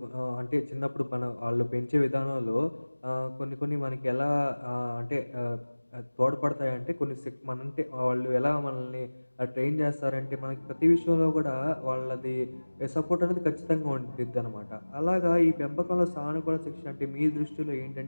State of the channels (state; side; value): inverted; both; correlation -1.00